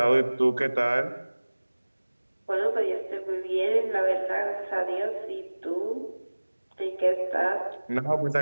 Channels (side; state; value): both; inverted; correlation -1.00